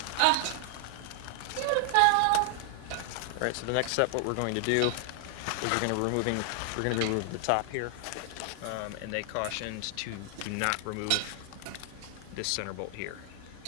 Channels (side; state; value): both; different; correlation 0.00